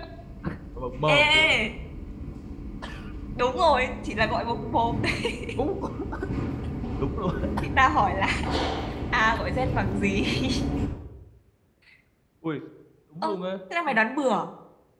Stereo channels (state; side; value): identical; both; correlation 1.00